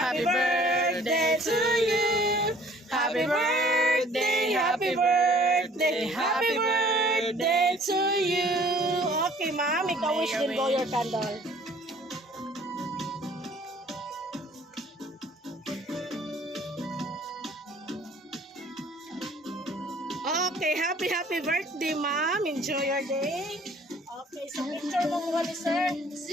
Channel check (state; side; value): normal; both; correlation 0.55